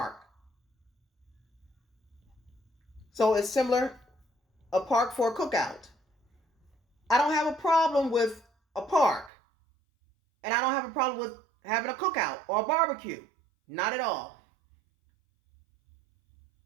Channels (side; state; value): left; drops out; at 9.3 s